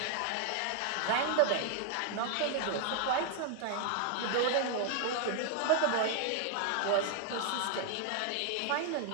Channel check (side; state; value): both; different; correlation 0.00